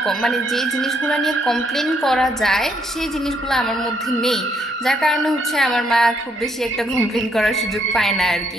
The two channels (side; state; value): both; normal; correlation 0.72